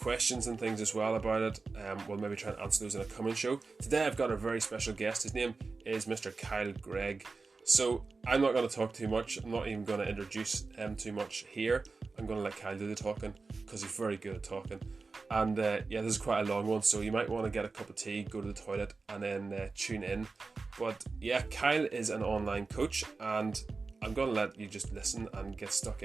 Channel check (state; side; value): quieter; left; 4.1 dB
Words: and things as well about it. We'll maybe try and answer those in a coming show. Today I've got a very special guest. His name is Mr. Kyle Gregg. So I'm not going to talk too much. I'm not even going to introduce him too much here. I'm going to let Kyle do the talking because he's very good at talking. And this is quite a long one, so you might want to get a cup of tea, go to the toilet, and then tune in. But yeah, Kyle is an online coach, and I'm going to let you just listen and get stuck